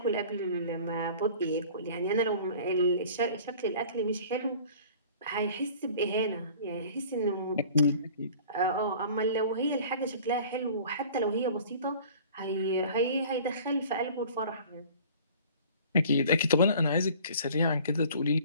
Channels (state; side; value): inverted; both; correlation -0.47